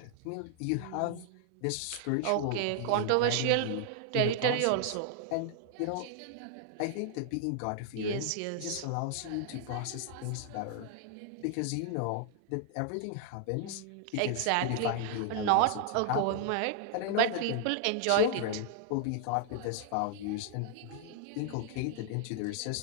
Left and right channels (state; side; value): different; both; correlation 0.00